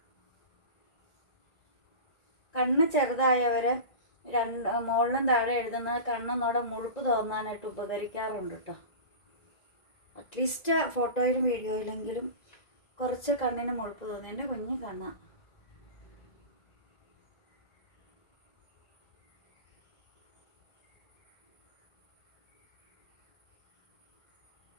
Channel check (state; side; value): late; right; 2.0 ms